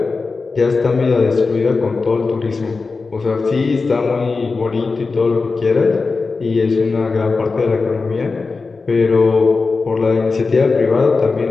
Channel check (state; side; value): quieter; right; 4.2 dB